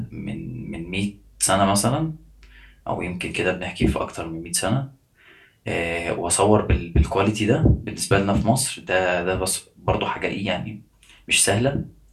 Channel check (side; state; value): both; identical; correlation 1.00